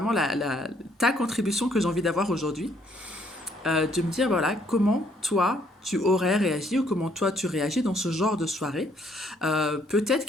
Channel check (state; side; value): normal; both; correlation 0.67